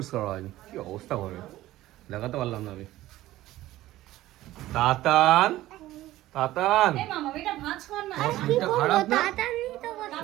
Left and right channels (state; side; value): quieter; left; 15.7 dB